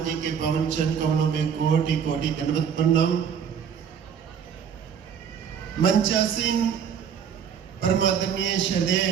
जी के पावन चरण कमलों में कोटि कोटि दंडवत प्रणाम। मंचासीन परमादरणीय श्रद्धेय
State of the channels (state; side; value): quieter; left; 7.5 dB